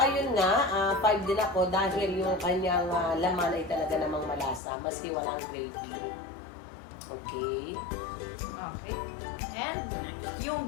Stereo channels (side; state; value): right; drops out; at 4.6 s